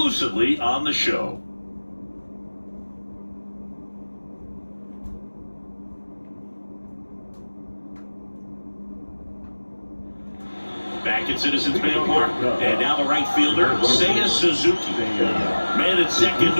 on the show. Back at Citizens Bank Park, and now the right fielder, Seiya Suzuki. Man at second,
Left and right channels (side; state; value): both; inverted; correlation -1.00